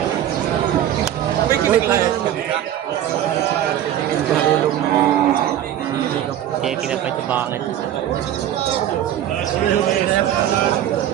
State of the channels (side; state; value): left; quieter; 11.4 dB